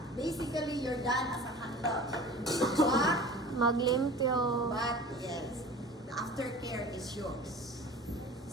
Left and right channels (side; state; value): both; normal; correlation 0.40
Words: Basically, you're done as a handler. Maglimpyo. But yes, the aftercare is yours.